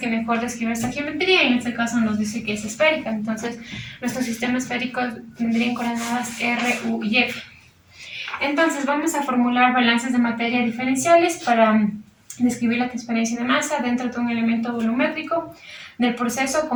mejor describe esta geometría, y en este caso nos dice que es esférica. Entonces nuestro sistema esférico tendría coordenadas R, U y F. Entonces vamos a formular balances de materia diferenciales para describir la transferencia de masa dentro de un elemento volumétrico del proceso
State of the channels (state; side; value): identical; both; correlation 1.00